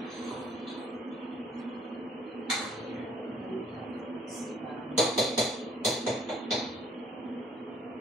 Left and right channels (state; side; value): normal; both; correlation 0.61